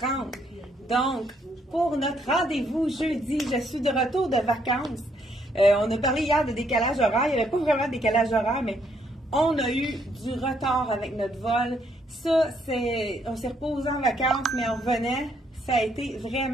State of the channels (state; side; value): normal; both; correlation 0.71